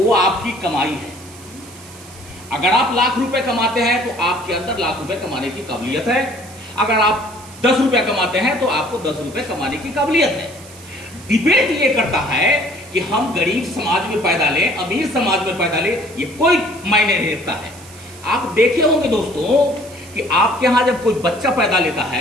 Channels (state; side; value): noise; right; hiss, 20 dB below the sound